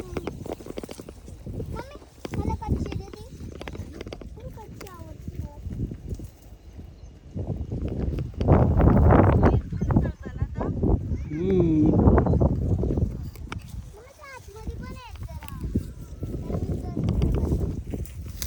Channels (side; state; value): both; identical; correlation 1.00